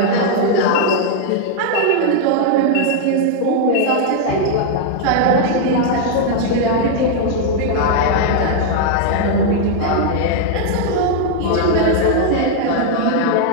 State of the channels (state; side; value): different; both; correlation 0.00